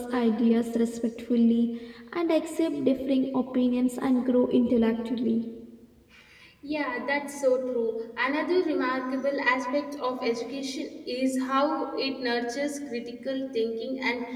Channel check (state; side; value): identical; both; correlation 1.00